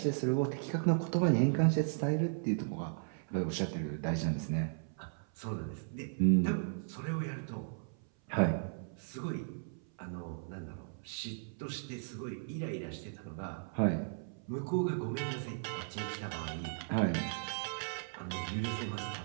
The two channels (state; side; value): silent; left; 54 dB below the other